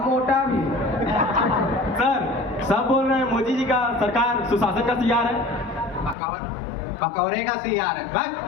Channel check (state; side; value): drops out; right; at 6.2 s